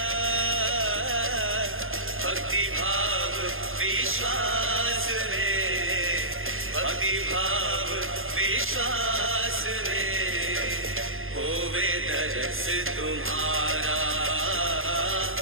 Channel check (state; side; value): late; left; 0.60 ms